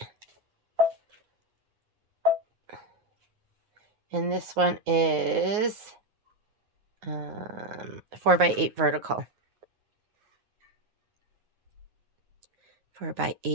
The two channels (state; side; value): late; left; 9.4 ms